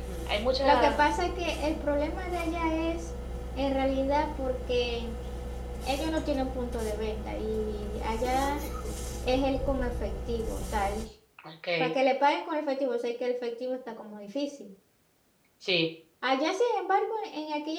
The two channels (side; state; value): both; identical; correlation 1.00